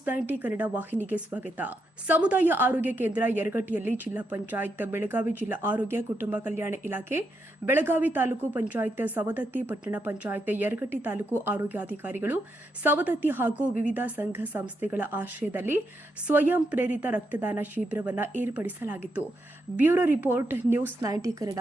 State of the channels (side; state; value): both; normal; correlation 0.82